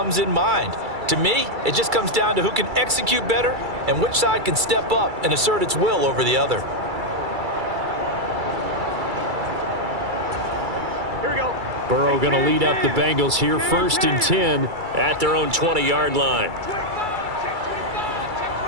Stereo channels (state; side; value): late; left; 2.3 ms